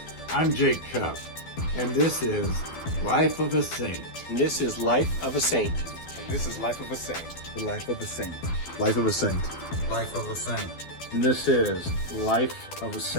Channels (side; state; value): right; late; 12 ms